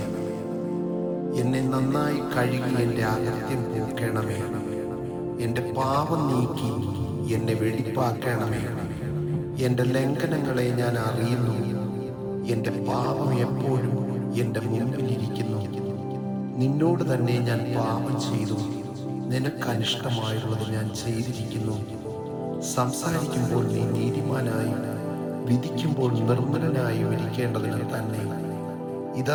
എന്നെ നന്നായി കഴുകി എൻ്റെ അകത്യം പോക്കണമേ. എൻ്റെ പാപം നീക്കി എന്നെ വെടിപ്പാക്കണമേ. എൻ്റെ ലംഘനങ്ങളെ ഞാൻ അറിയുന്നു. എൻ്റെ പാപം എപ്പോഴും എൻ്റെ മുമ്പിലിരിക്കുന്നു. നിന്നോട് തന്നെ ഞാൻ പാപം ചെയ്തു. നിനക്കനിഷ്ടമായുള്ളത് ഞാൻ ചെയ്തിരിക്കുന്നു. സംസാരിക്കുമ്പോൾ നീ നീതിമാനായും വിധിക്കുമ്പോൾ നിർമ്മലനായും ഇരിക്കേണ്ടതിന് തന്നെ. ഇതാ,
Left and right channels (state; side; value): identical; both; correlation 1.00